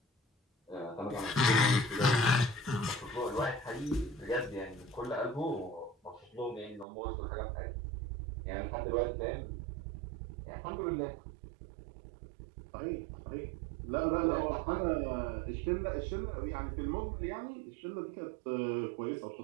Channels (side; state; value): left; drops out; at 6.9 s